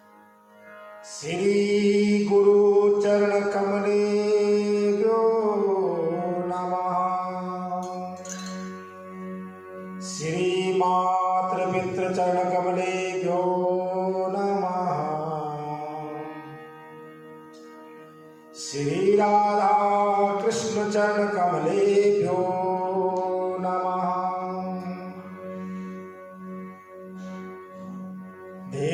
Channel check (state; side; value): identical; both; correlation 1.00